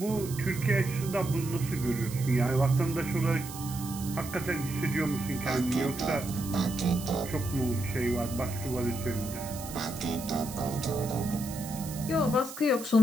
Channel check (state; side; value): noise; right; hiss, 12 dB below the sound